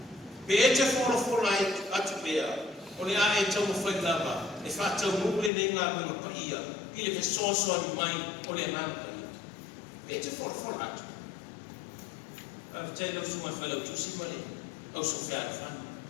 Pe e te whora atu pea. O le a e tau mo whai lava. E whātau mule nei ngā mga paia, i le whesoasoa ni mai o le ngā paia. E te whora atu. A whatai lau sunga whailau tusi male, au so whiara whana.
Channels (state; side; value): drops out; right; at 5.5 s